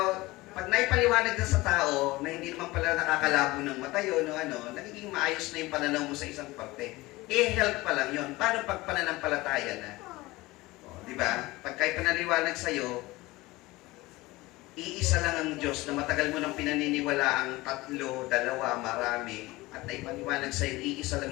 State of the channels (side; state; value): right; quieter; 20.4 dB